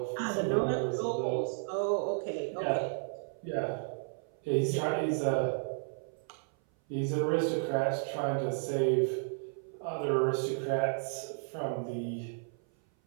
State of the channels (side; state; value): left; silent; 56 dB below the other